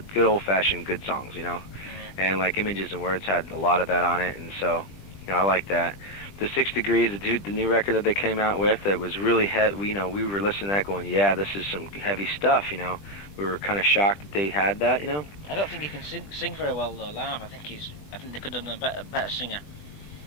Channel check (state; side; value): late; right; 20 ms